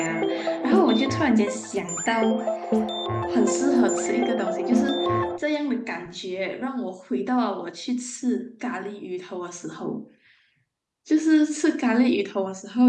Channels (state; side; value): identical; both; correlation 1.00